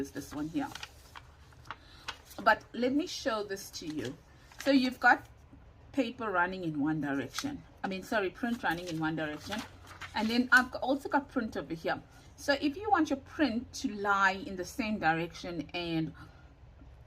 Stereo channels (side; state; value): both; identical; correlation 1.00